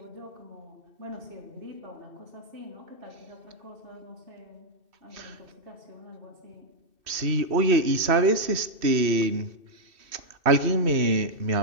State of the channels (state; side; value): late; left; 2.6 ms